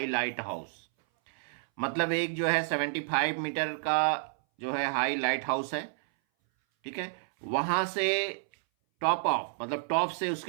lighthouse, मतलब एक जो है 75 मीटर का जो है हाई लाइट हाउस है, ठीक है, वहां से टॉप ऑफ मतलब टॉप से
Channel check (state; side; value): silent; left; 58 dB below the other